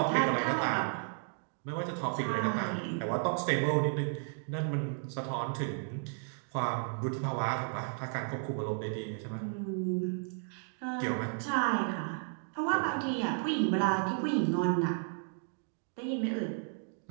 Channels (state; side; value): silent; left; 55 dB below the other